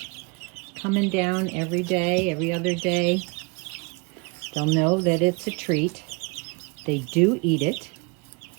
coming down every day, every other day, they'll know that it's a treat. They do eat it.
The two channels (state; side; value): quieter; left; 30.2 dB